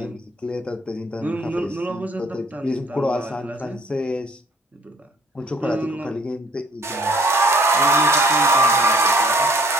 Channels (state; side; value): normal; both; correlation 0.58